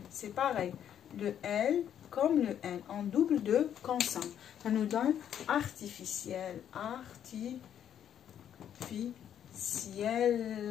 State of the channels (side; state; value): right; quieter; 9.6 dB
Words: c'est pareil. Le L comme le N, en double de consonne. Ça nous donne artificiel.